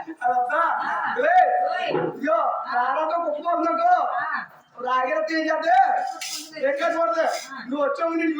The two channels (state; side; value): identical; both; correlation 1.00